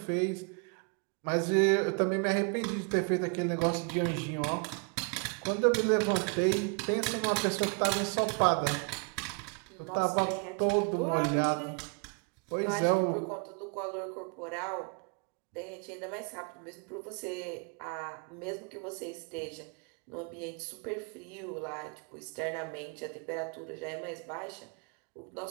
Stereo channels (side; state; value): left; quieter; 36.1 dB